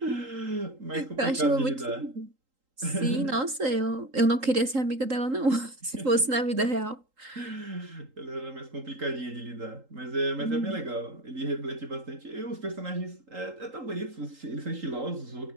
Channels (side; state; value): left; late; 3.8 ms